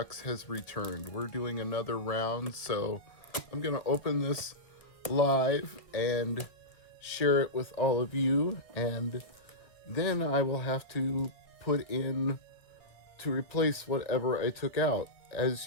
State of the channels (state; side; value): late; right; 1.4 ms